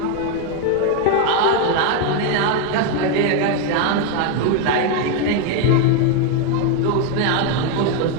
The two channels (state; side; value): different; both; correlation 0.01